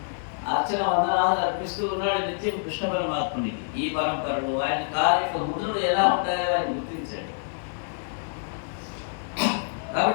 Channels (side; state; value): right; silent; digital silence